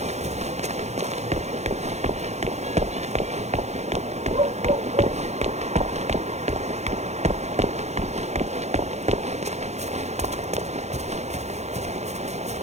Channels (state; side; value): late; left; 0.32 ms